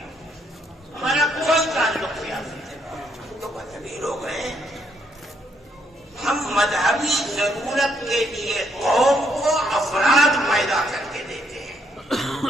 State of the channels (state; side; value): normal; both; correlation 0.73